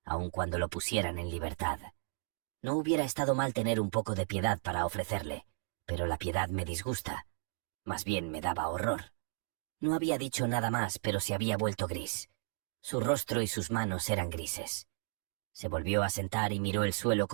aun cuando lo pusieran en libertad. No hubiera estado mal tener un poco de piedad para ofrecerle, pero la piedad me disgusta. Más bien me daba horror. No había dicho nada más, pero se había vuelto gris. Su rostro y sus manos eran grises. Se volvió a sentar y miró el suelo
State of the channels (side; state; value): left; silent; 55 dB below the other